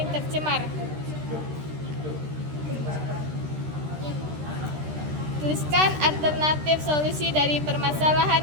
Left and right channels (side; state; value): left; late; 13 ms